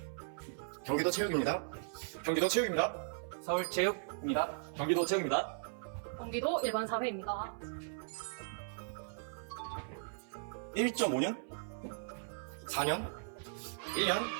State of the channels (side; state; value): left; silent; 53 dB below the other